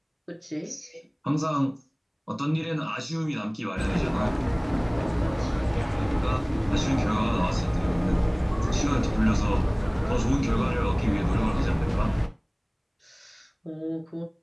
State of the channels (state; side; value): identical; both; correlation 1.00